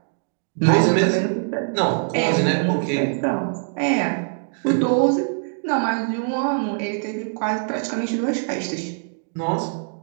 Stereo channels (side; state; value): left; silent; digital silence